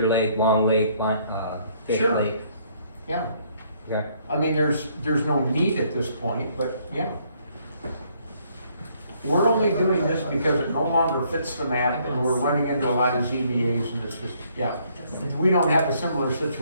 Lake, Long Lake, Fish Sure. Lake? Yeah, Okay. I mean, there's no need at this point, but yeah. We're only doing this because it no longer fits the map, and we're running into a lot of ZBAs, and it's just, yeah. We don't have a similar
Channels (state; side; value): inverted; both; correlation -0.67